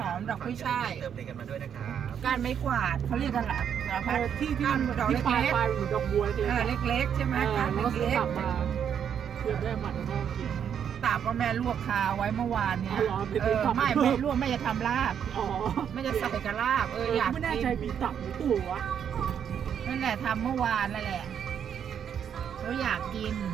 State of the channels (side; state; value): left; quieter; 8.4 dB